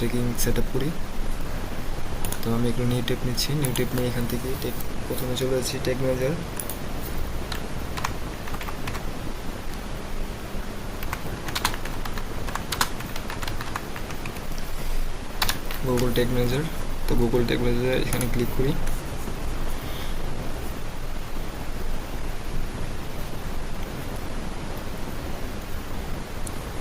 set up করি। তো আমি একটু নিউ ট্যাব নিচ্ছি। নিউ ট্যাব নিয়ে এখান থেকে প্রথমে চলে যাচ্ছি tag manager. Google tag manager. তো গুগল ট্যাগ ম্যানেজার এখানে ক্লিক করি।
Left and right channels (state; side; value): identical; both; correlation 1.00